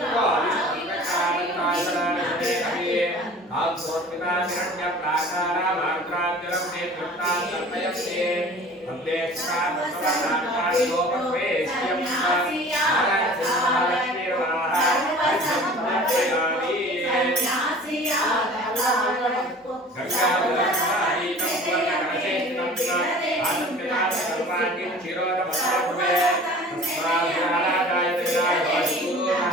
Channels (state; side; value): normal; both; correlation 0.44